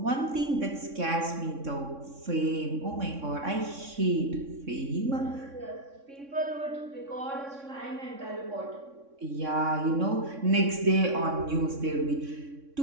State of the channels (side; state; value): left; late; 3.6 ms